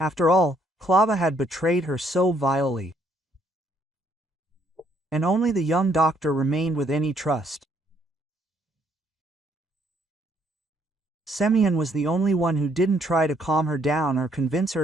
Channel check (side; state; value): both; normal; correlation 0.68